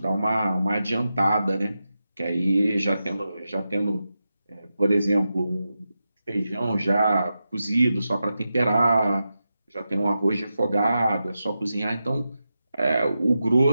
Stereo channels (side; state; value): both; inverted; correlation -0.90